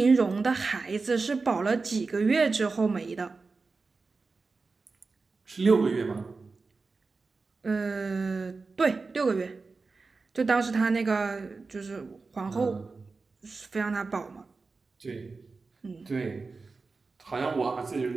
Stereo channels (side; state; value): left; quieter; 4.1 dB